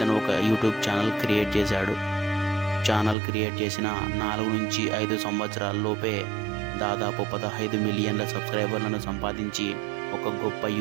ఒక యూట్యూబ్ ఛానల్ క్రియేట్ చేశాడు. ఛానల్ క్రియేట్ చేసిన 4 నుంచి 5 సంవత్సరాల్లోపే దాదాపు 15 మిలియన్ల సబ్స్క్రైబర్లను సంపాదించి ఒక గొప్ప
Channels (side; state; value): left; drops out; at 3.2 s